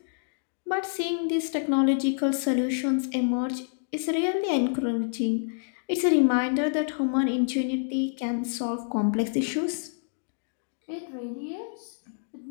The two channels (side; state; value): right; silent; digital silence